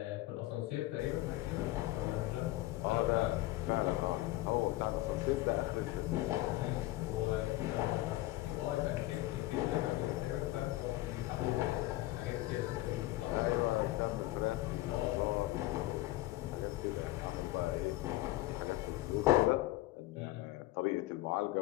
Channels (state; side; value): quieter; right; 17.3 dB